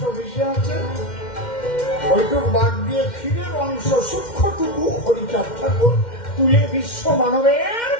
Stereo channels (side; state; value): right; late; 2.1 ms